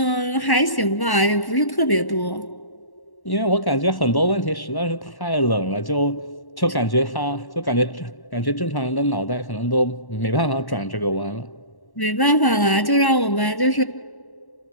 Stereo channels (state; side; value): late; right; 1.1 ms